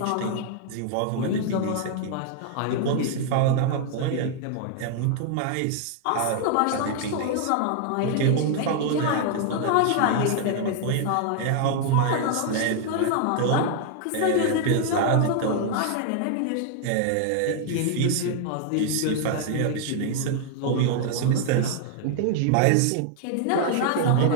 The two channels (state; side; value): different; both; correlation 0.00